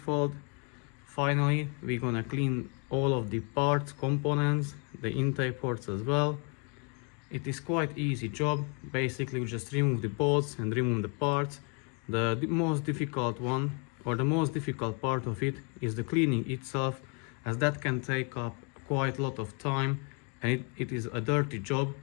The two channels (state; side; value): quieter; right; 37.0 dB